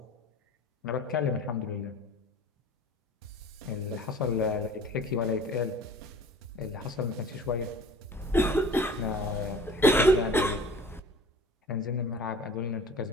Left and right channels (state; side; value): normal; both; correlation 0.45